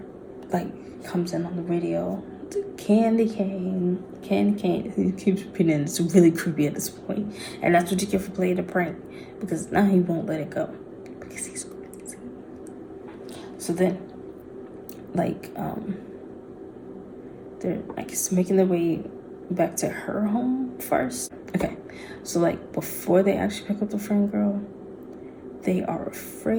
like comes in on the radio. Candy cane. He keeps repeating it. It's really creepy at this point. And that's what you get for playing a prank. Because now he won't let it go. Because he's crazy. So then, like, they're, I guess, making their way back to her home first. Okay. So, like, before they actually pick up the friend girl, they are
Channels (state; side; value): identical; both; correlation 1.00